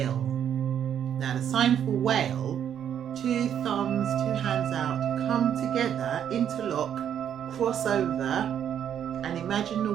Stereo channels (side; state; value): left; quieter; 9.3 dB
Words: Now the sign for whale, 2 thumbs, 2 hands out, come together, interlock, cross over, and imagine the